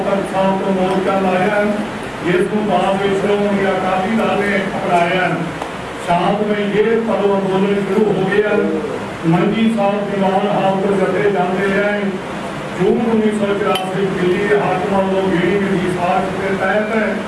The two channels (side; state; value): both; identical; correlation 1.00